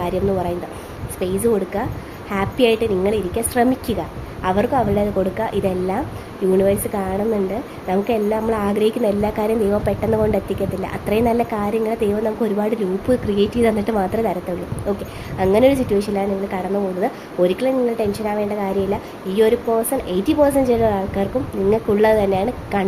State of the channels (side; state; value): both; identical; correlation 1.00